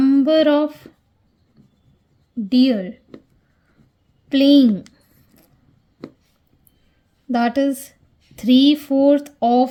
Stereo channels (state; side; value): identical; both; correlation 1.00